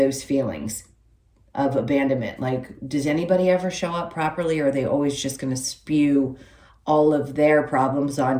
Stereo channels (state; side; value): identical; both; correlation 1.00